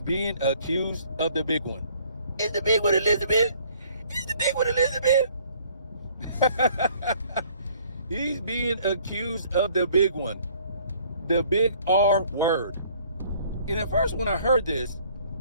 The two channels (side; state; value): both; inverted; correlation -0.59